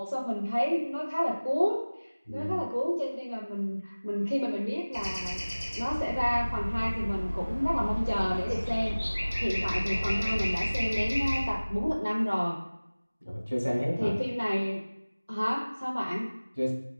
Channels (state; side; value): inverted; both; correlation -1.00